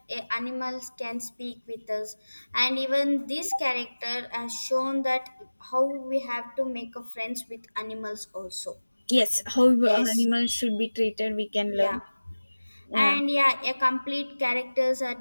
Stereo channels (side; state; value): both; inverted; correlation -1.00